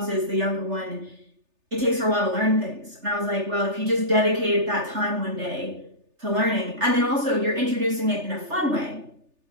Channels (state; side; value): late; left; 3.4 ms